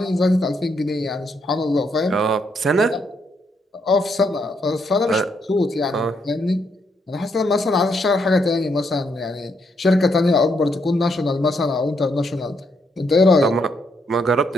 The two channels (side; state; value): both; normal; correlation 0.76